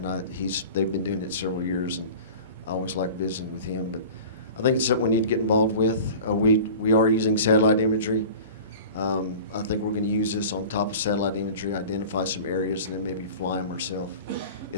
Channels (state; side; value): inverted; both; correlation -0.38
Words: they've been doing it several years, and I always like visiting with him. But I think it's something we need to get involved with. We are using satellite imagery. I think we're going to use this on top of satellite imagery, identify some areas, and then maybe fly them ourselves.